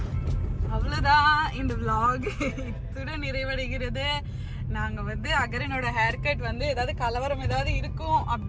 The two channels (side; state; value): both; identical; correlation 1.00